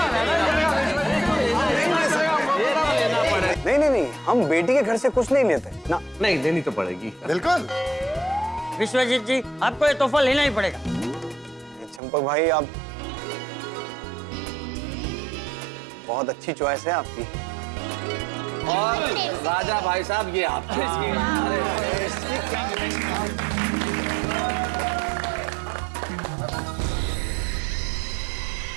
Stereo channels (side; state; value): left; drops out; at 12.0 s